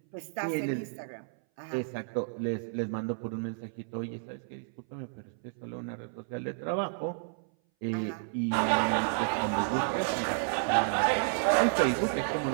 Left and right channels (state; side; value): silent; left; 57 dB below the other